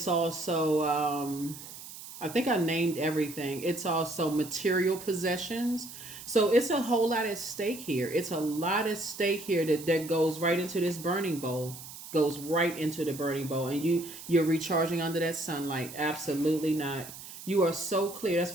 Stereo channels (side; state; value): right; noise; hiss, 14 dB below the sound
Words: also I think I named everything. It's also material possessions. So it's a whole lot at stake here. It's a lot at stake here that goes right into this burning bowl. Goes right into the burning bowl, and you're recharging under that sunlight. Absolutely not. You are so clear. That's